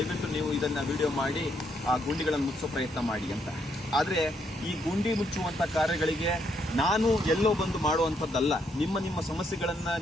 ನೀವು ಇದನ್ನು ವಿಡಿಯೋ ಮಾಡಿ ಆ ಗುಂಡಿಗಳನ್ನು ಮುಚ್ಚೋ ಪ್ರಯತ್ನ ಮಾಡಿ ಅಂತ. ಆದರೆ ಈ ಗುಂಡಿ ಮುಚ್ಚುವಂಥ ಕಾರ್ಯಗಳಿಗೆ ನಾನು ಎಲ್ಲೋ ಬಂದು ಮಾಡುವಂಥದ್ದಲ್ಲ. ನಿಮ್ಮ ಸಮಸ್ಯೆಗಳನ್ನು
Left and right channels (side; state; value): both; normal; correlation 0.74